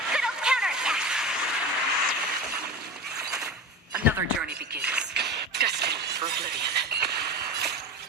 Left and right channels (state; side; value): normal; both; correlation 0.28